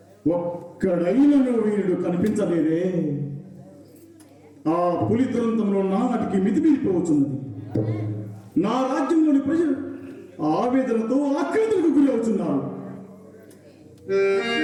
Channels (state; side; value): identical; both; correlation 1.00